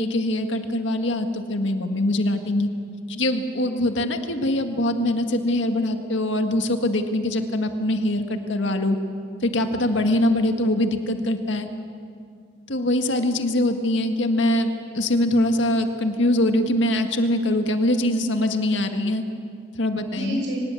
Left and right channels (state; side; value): normal; both; correlation 0.54